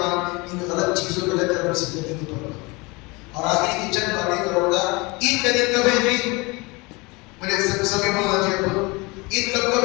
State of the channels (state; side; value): quieter; right; 25.7 dB